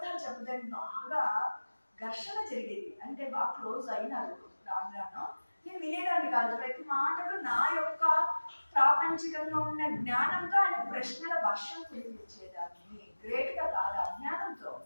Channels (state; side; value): inverted; both; correlation -1.00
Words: చెప్పడానికి బాగా ఘర్షణ జరిగేది. అంటే బాగా క్లోజ్ అయినారు రాను. నేను వినేదాన్ని కాదు. ప్రతి మాటలు నా యొక్క ప్రాపంచికంగా ఉన్న జ్ఞానంతో ఆయన ప్రశ్నల వర్షం కురిపించేదాన్ని. గ్రేట్గా కాదు, అజ్ఞానంతో